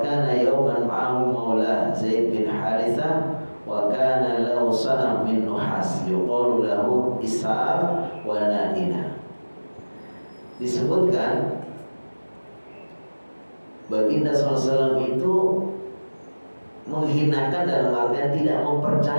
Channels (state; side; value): inverted; both; correlation -1.00